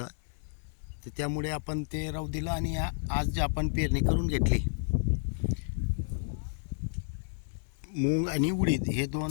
तर त्यामुळे आपण ते राहू दिलं आणि आज आपण पेरणी करून घेतली. मूग आणि उडीद हे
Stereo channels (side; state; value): right; silent; 57 dB below the other